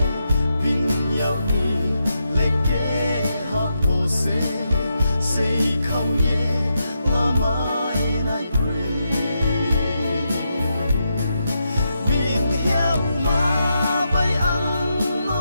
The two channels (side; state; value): both; inverted; correlation -0.84